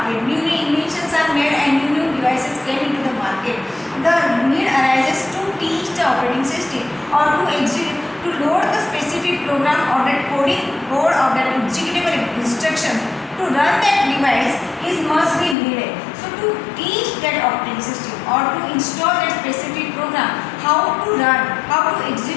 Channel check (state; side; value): drops out; right; at 15.6 s